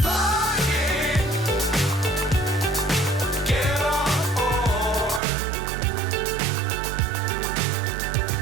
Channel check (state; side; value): drops out; left; at 5.2 s